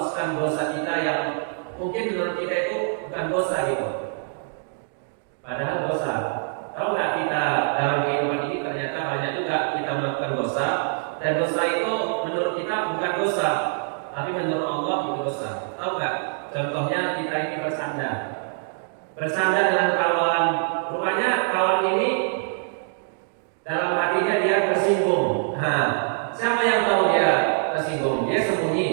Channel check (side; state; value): left; silent; 62 dB below the other